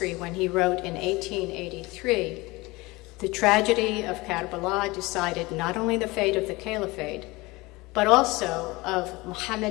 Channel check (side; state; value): right; quieter; 22.4 dB